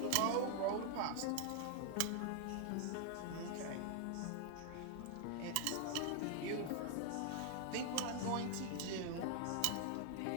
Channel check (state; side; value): different; both; correlation 0.00